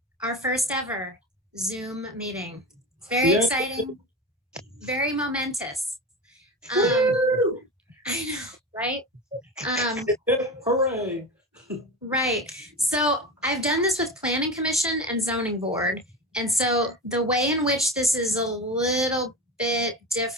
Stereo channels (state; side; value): normal; both; correlation 0.26